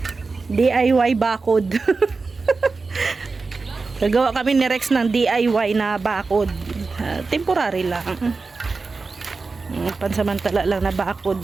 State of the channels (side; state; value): left; quieter; 4.1 dB